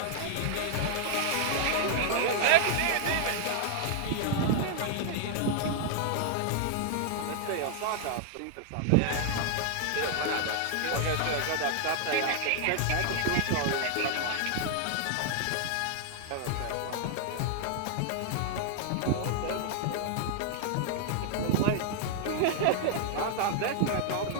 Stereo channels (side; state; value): both; different; correlation 0.00